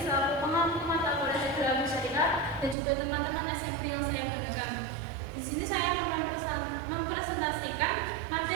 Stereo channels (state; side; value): drops out; left; at 2.8 s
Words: selaku pengampu mata kuliah Ekonomi Syariah dan juga teman-teman SMP yang saya banggakan. Di sini saya akan mempresentasikan